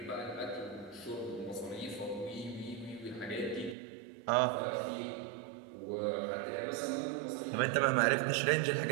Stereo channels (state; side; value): drops out; left; at 3.8 s